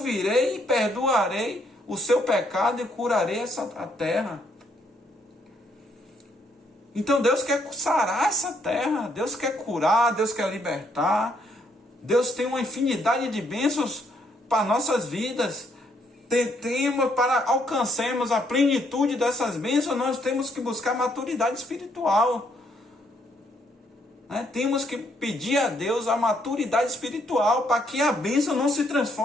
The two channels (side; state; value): both; normal; correlation 0.71